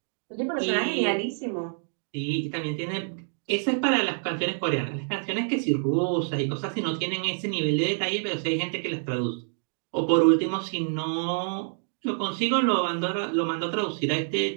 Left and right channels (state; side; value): silent; left; 60 dB below the other